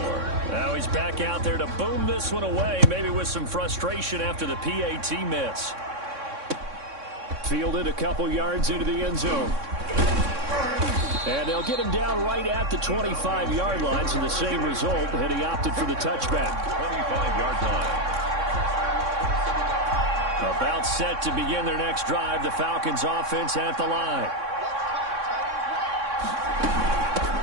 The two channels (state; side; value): late; left; 3.6 ms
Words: Now he's back out there to boom this one away, maybe with some frustration after the PAT miss. Fielded a couple yards into the end zone. And they'll get him down right at the 25-yard line, so the same result, and he opted for the touchback. 25-yard line. About set to begin their next drive, the Falcons offense at the line.